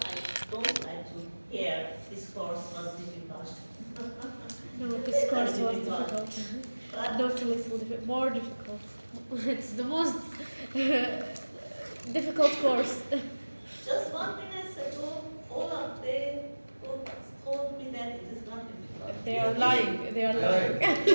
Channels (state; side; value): inverted; both; correlation -1.00